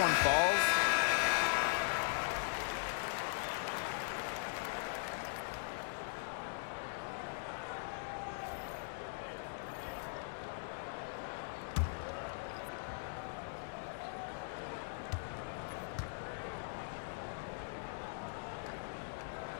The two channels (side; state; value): right; silent; digital silence